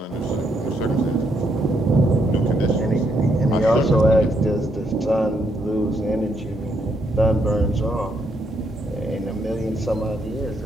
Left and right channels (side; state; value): both; normal; correlation 0.75